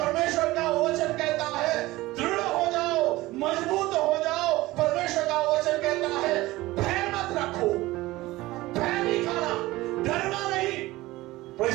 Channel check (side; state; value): left; quieter; 18.7 dB